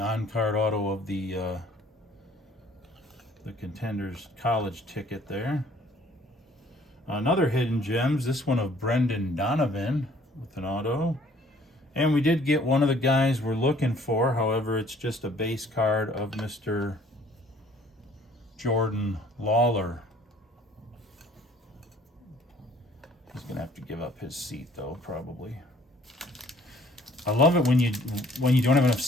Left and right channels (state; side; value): normal; both; correlation 0.57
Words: auto of the Contenders college ticket there. Another Hidden Gems, this one of Brendan Donovan with an auto. And we did get one of the guys we're looking for, however, it's just a base card of Mr. Jordan Lawler. He's gonna have to give up his seat though, probably. I love it when you don't have enough